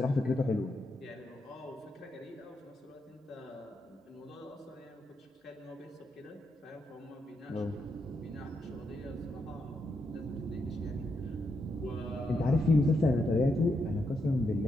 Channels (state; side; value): normal; both; correlation 0.82